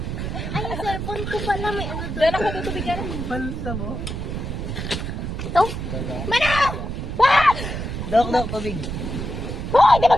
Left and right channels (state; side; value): noise; right; rumble, 4 dB below the sound